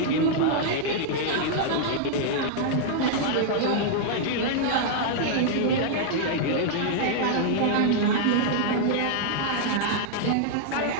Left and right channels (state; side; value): different; both; correlation -0.01